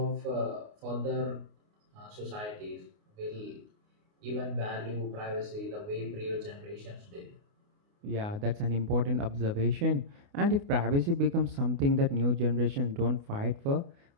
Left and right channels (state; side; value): late; left; 29 ms